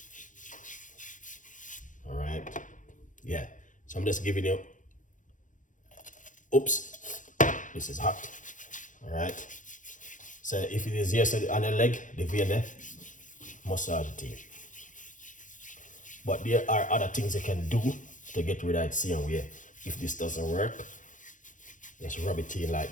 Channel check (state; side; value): late; right; 0.37 ms